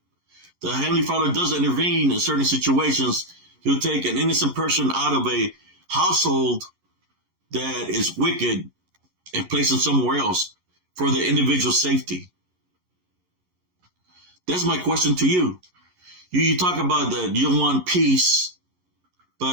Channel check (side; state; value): left; late; 11 ms